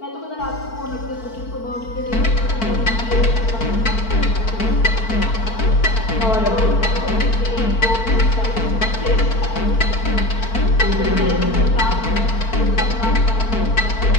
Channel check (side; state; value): right; late; 4.5 ms